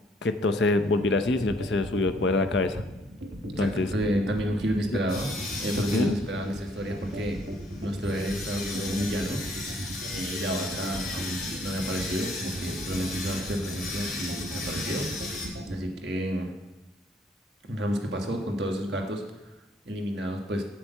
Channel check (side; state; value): both; normal; correlation 0.65